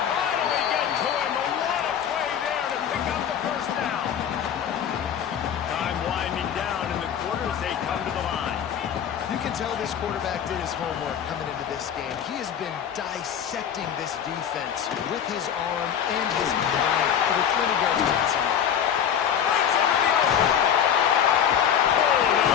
finally get to him, but what a play there to pick up the first down. Time winding down in the quarter as they come to the line. You can tell this quarterback did his homework coming into this game. He has been dissecting this defense with his arm and his mind. Over 20 yards passing. Brings him to the open.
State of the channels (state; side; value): quieter; right; 8.8 dB